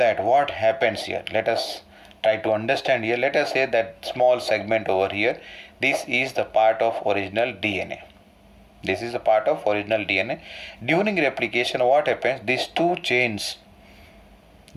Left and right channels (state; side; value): identical; both; correlation 1.00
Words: what happens here? Let us try to understand here. Let us say that small segment over here, this is the part of original DNA. This is the part of original DNA. During replication, what happens? These two chains,